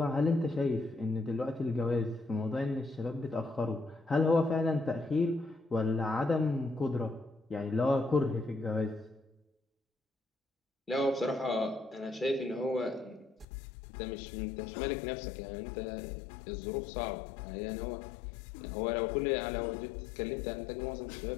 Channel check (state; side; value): drops out; right; at 13.5 s